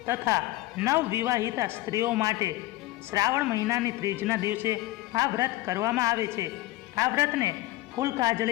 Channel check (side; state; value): right; quieter; 18.1 dB